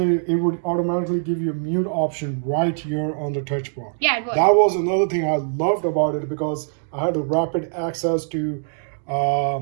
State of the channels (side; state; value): left; silent; digital silence